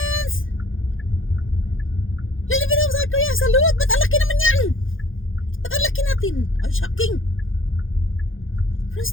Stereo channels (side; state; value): right; late; 0.58 ms